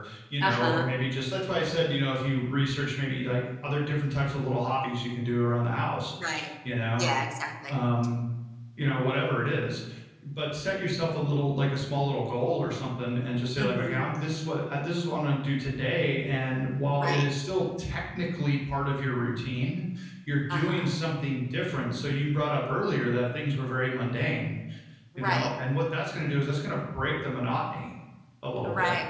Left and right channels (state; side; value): identical; both; correlation 1.00